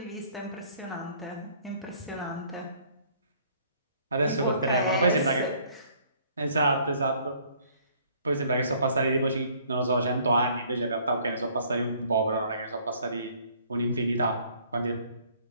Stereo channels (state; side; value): inverted; both; correlation -0.60